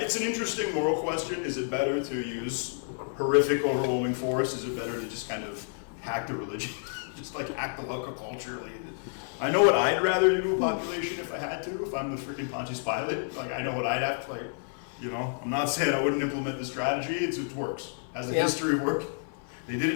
an interesting moral question. Is it better to use horrific, overwhelming force? Is it better to just kind of hack the religion? Just like hack the local culture? I know what I'd rather do to a population if I had to, if I'm the freaking Pontius Pilate. Like, I know what I'd have to, I'm not saying I wouldn't implement the strategy. It works. Has a history of work. They did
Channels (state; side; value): silent; right; 58 dB below the other